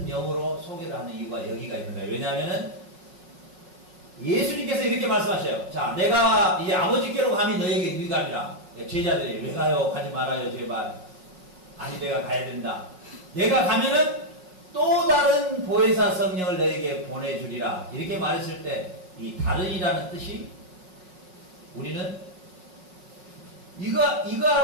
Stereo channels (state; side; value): late; left; 5.5 ms